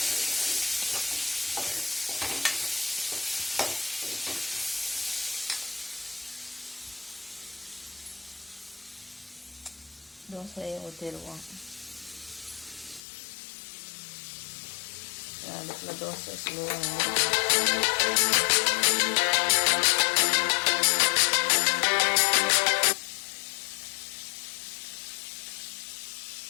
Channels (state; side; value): drops out; right; at 13.0 s